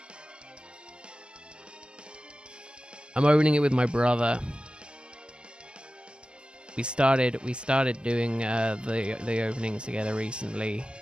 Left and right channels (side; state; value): left; late; 0.054 ms